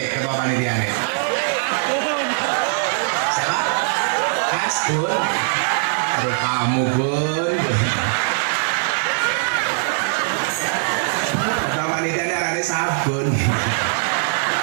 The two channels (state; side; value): silent; left; digital silence